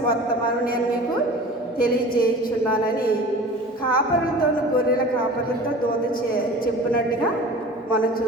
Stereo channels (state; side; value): normal; both; correlation 0.40